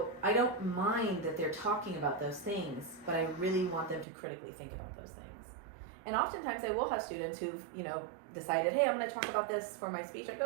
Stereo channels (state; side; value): drops out; left; at 4.0 s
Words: I don't mind that they're talking about those things, but I really want them to critically think about those things. And oftentimes I will have students who've, you know, decided, hey, I'm going to talk about this for my speech. I